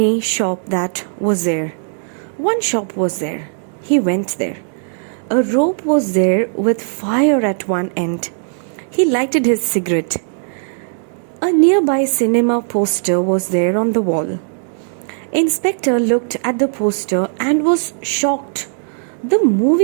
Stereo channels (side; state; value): left; silent; digital silence